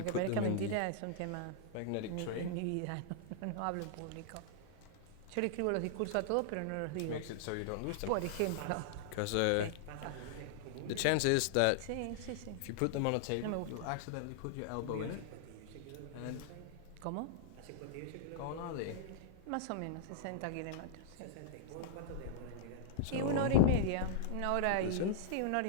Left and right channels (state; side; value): different; both; correlation -0.01